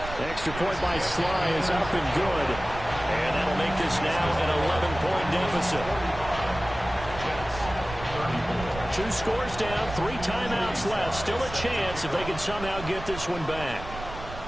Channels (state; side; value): noise; right; rumble, 11 dB below the sound